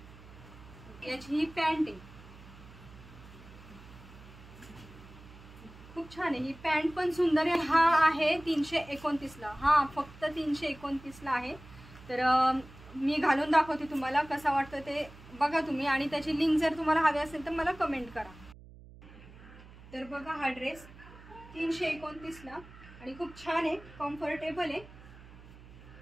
याची ही पॅन्ट आहे, खूप छान आहे, ही पॅन्ट पण सुंदर आहे। हा आहे 329 ला, हा फक्त 329 ला आहे। तर मी घालून दाखवते तुम्हाला कसा वाटतं ते बघा तुम्ही, आणि त्याची लिंक जर तुम्हाला हवी असेल तर मला कमेंट करा। तर बघा, हा ड्रेस 329 ला आणि खूप छान आहे, कम्फर्टेबल आहे,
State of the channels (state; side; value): noise; right; hum, 19 dB below the sound